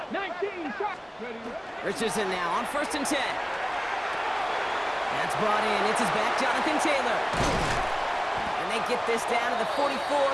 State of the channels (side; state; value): both; identical; correlation 1.00